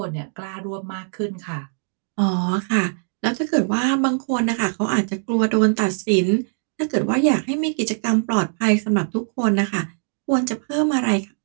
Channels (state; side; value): silent; left; digital silence